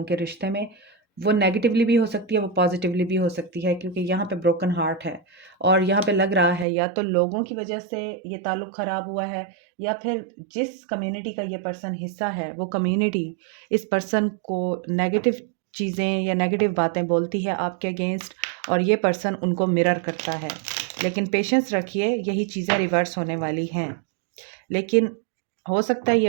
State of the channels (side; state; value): left; drops out; at 6.7 s